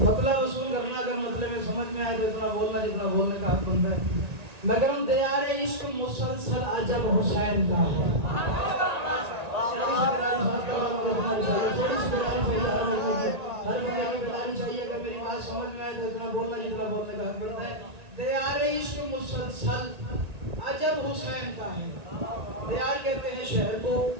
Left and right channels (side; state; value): left; late; 1.8 ms